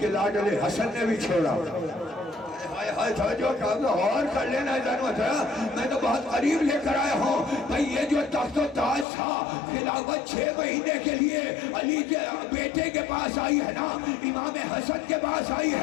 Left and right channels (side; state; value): right; drops out; at 9.1 s